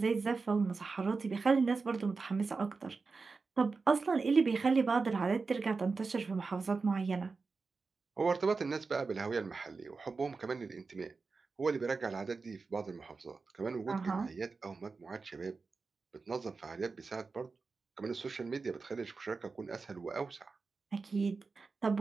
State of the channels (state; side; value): quieter; left; 4.4 dB